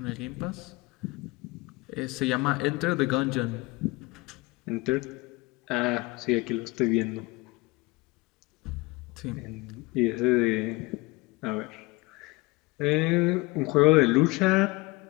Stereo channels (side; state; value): right; quieter; 23.7 dB